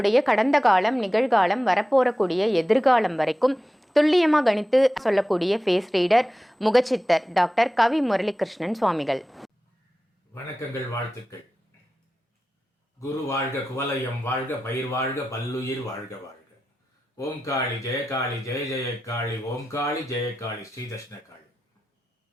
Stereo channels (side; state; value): both; normal; correlation 0.93